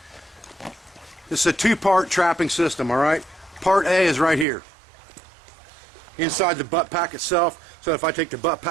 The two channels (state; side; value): drops out; left; at 4.5 s